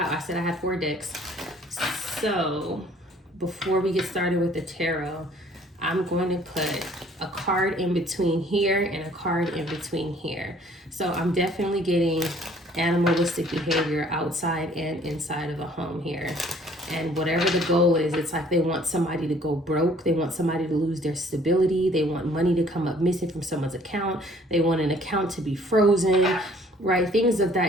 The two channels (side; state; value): both; normal; correlation 0.57